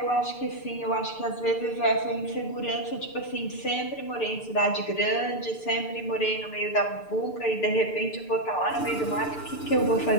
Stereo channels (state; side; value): late; right; 6.8 ms